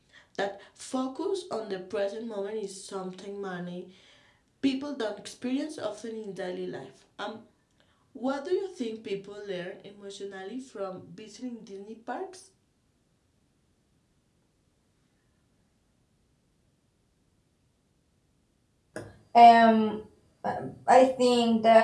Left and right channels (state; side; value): identical; both; correlation 1.00